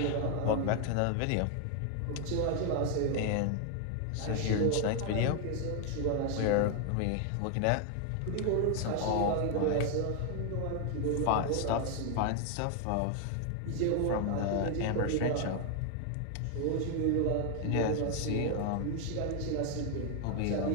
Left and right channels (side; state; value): both; different; correlation 0.00